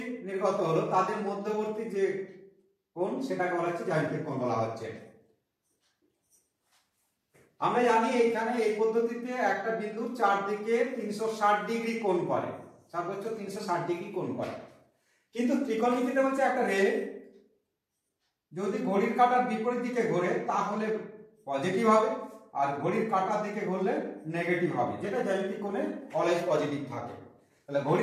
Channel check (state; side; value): identical; both; correlation 1.00